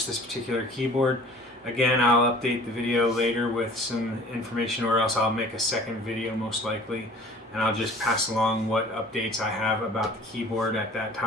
this particular keyboard. Again, I'll update the video later with some information, or else I'll make a second video most likely, and I'll just pass along what updates I have about the keyboard at that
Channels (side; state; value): both; normal; correlation 0.48